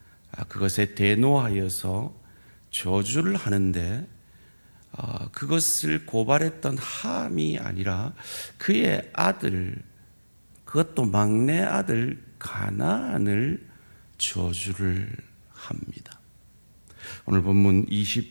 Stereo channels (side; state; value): both; inverted; correlation -1.00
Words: 그것에 대노하여서 저주를 하는데 그것을 고발했던 함이 아니라 그의 아들, 그것도 막내 아들 가나안을 저주를 합니다. 오늘 본문